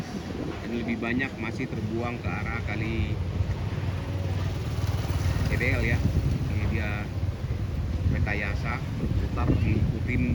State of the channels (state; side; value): identical; both; correlation 1.00